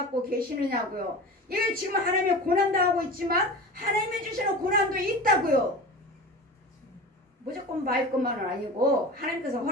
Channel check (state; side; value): normal; both; correlation 0.32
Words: 계시느냐고요. 이게 지금 하나님의 고난도 하고 있지만 하나님이 주시는 고난도 있다고요. 무조건 말 것만은 아니고 하나님께서